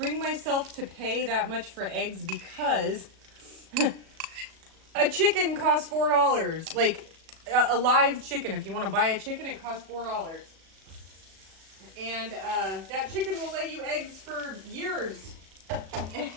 myself to pay that much for eggs because a chicken costs $4. Like a live chicken, if you want to buy a chicken, it costs $4. And that chicken will lay you eggs for years.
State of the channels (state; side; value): late; left; 37 ms